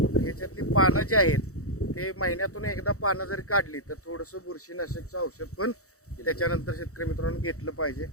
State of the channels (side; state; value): right; late; 0.65 ms